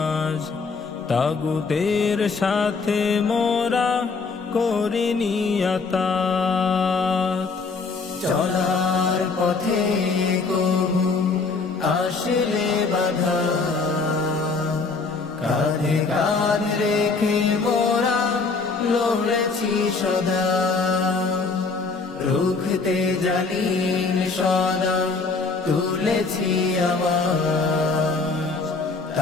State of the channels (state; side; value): quieter; right; 4.3 dB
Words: তাগুতের সাথে মোরা করিনি আতাত। চলার পথে কভু আসলে বাধা, কাঁধে কাঁধ রেখে মোরা লড়েছি সদা। রুখতে জালিম সদা তুলেছি আওয়াজ,